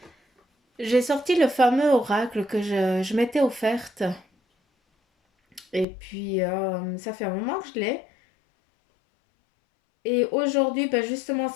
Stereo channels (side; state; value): right; drops out; at 5.9 s